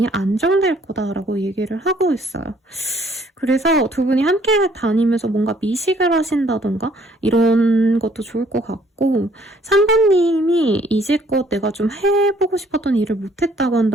안정될 거다라고 얘기를 하고 있어요. 그래서 두 분이 함께 다니면서 뭔가 미식을 하신다던가 이런 것도 좋을 것 같고 3번님이 이제껏 내가 좀 해보고 싶었던 일을 못했다고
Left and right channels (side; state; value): both; normal; correlation 0.62